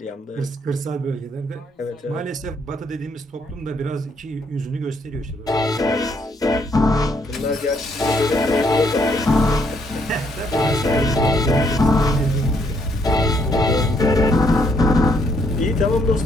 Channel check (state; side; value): normal; both; correlation 0.71